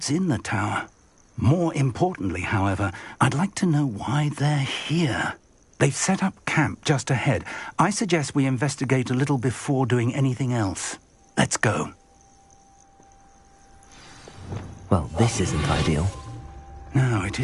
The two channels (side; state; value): both; identical; correlation 1.00